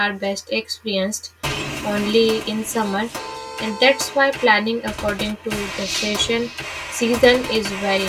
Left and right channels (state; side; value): identical; both; correlation 1.00